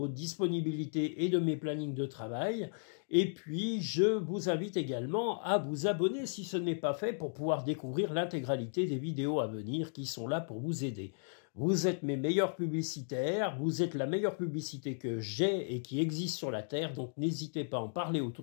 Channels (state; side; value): silent; right; digital silence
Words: disponibilités et de mes plannings de travail. Et puis, je vous invite également à vous abonner si ce n'est pas fait pour pouvoir découvrir l'intégralité des vidéos à venir qui sont là pour vous aider. Vous êtes mes meilleurs publicitaires, vous êtes la meilleure publicité que j'ai et qui existe sur la Terre, donc n'hésitez pas à en parler